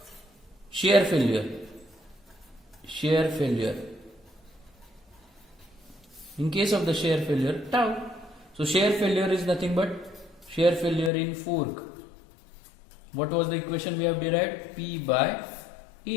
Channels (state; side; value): drops out; right; at 11.1 s